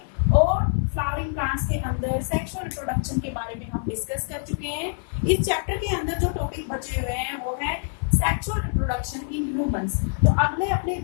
और फ्लावरिंग प्लांट्स के अंदर सेक्सुअल रिप्रोडक्शन के बारे में हम डिस्कस कर चुके हैं। इस चैप्टर के अंदर जो टॉपिक बचे हुए हैं वो है सेक्सुअल रिप्रोडक्शन इन ह्यूमंस। तो अगले अपने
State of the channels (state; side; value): silent; right; 62 dB below the other